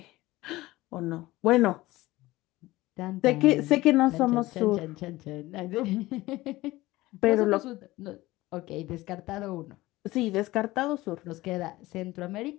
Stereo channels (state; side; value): quieter; right; 18.5 dB